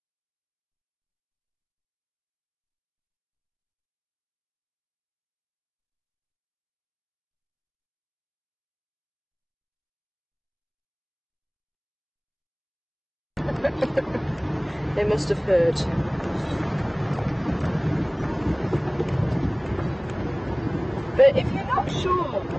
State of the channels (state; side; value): identical; both; correlation 1.00